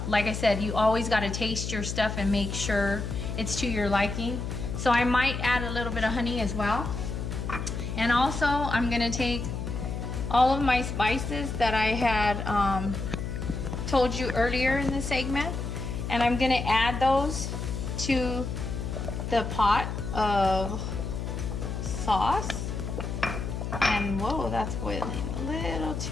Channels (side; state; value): left; noise; hum, 4 dB below the sound